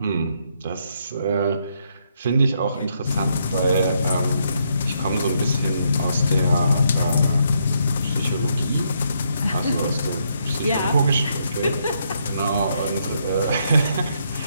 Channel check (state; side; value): inverted; both; correlation -0.75